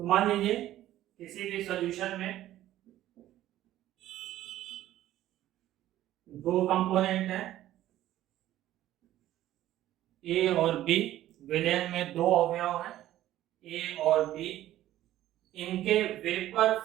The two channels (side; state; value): left; quieter; 13.7 dB